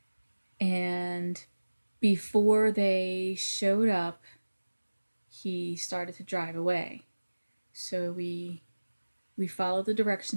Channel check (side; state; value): both; inverted; correlation -1.00